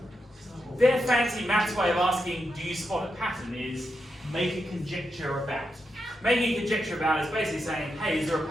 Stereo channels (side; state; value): both; normal; correlation 0.85